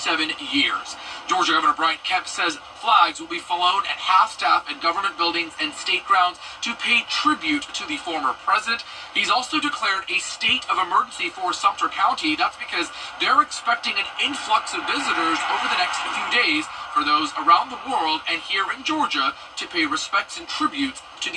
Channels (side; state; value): both; identical; correlation 1.00